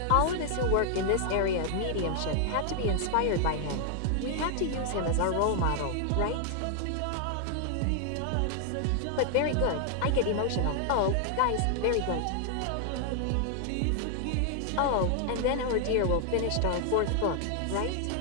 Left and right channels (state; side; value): different; both; correlation 0.00